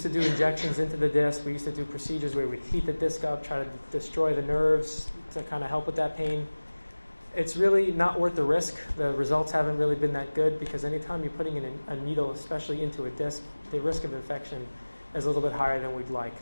to do injections into the disc. We used to do procedures where we'd heat the disc up, try to destroy the nerves to kind of help with that pain. It's really not worth the risk. The results haven't really been that good because anytime you're putting in a needle, especially into a disc, the risk of infection is a little bit higher than we'd like.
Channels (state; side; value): inverted; both; correlation -1.00